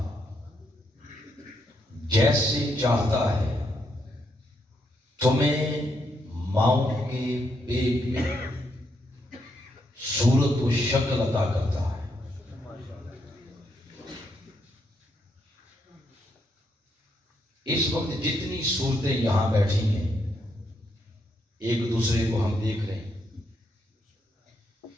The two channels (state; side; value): normal; both; correlation 0.77